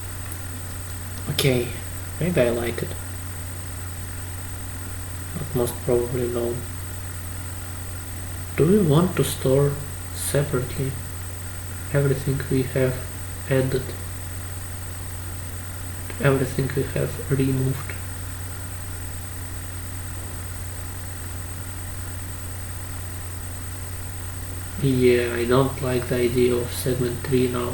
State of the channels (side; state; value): both; identical; correlation 1.00